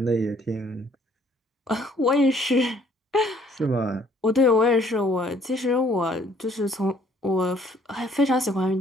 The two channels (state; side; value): normal; both; correlation 0.61